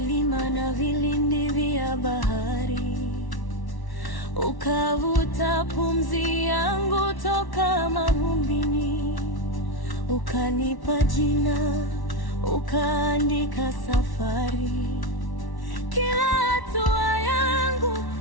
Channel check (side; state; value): right; late; 1.1 ms